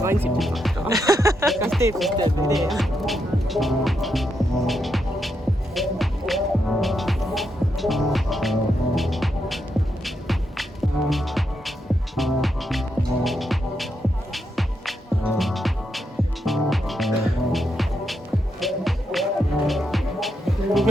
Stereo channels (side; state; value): both; normal; correlation 0.82